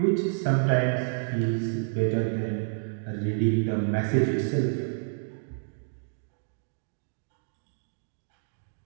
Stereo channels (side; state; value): left; silent; digital silence